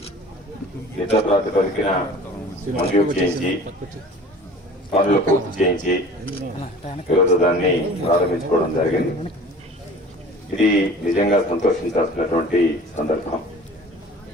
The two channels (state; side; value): normal; both; correlation 0.44